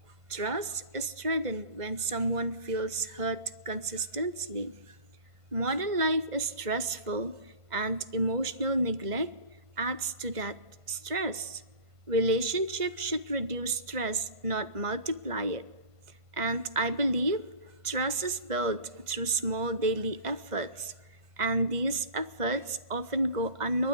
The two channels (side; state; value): left; late; 1.5 ms